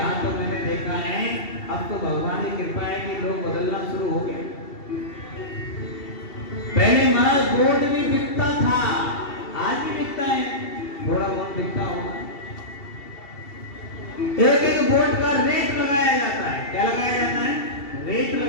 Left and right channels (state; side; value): late; right; 2.7 ms